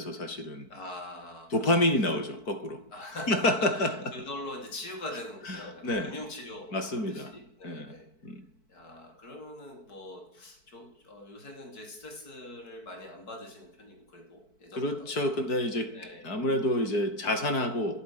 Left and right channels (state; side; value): late; right; 4.6 ms